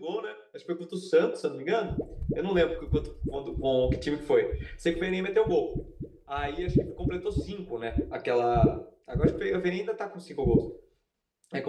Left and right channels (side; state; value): both; identical; correlation 1.00